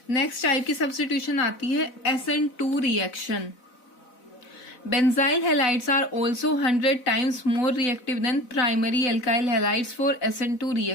नेक्स्ट टाइप की सब्स्टिट्यूशन आती है SN2 reaction. Benzyl halides are also 100 times more reactive than primary alkyl halides for SN2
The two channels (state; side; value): late; right; 4.0 ms